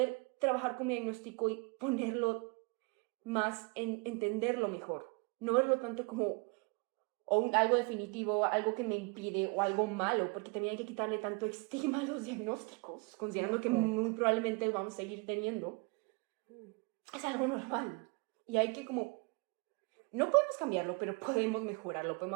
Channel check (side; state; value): left; quieter; 30.6 dB